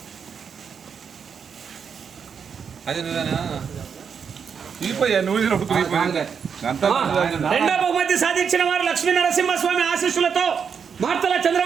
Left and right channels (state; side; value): quieter; left; 6.7 dB